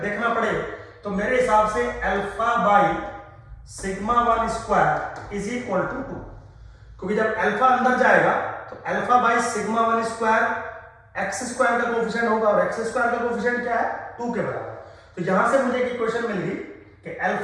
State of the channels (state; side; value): identical; both; correlation 1.00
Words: देखना पड़े तो मेरे हिसाब से alpha by sigma 1 square is equal to 2, क्योंकि जब अल्फा अंदर जाएगा तो alpha by sigma 1 square x square का कोफिशिएंट होगा, और एक्स स्क्वायर का कोफिशिएंट क्या है 2 के बराबर। तो यहां से मुझे एक इक्वेशन मिल गई कि